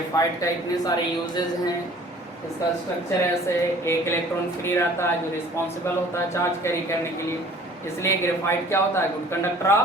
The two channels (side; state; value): both; normal; correlation 0.50